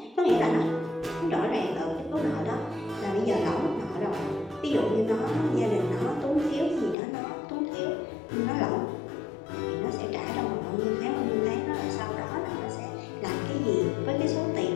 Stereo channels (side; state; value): right; drops out; at 7.0 s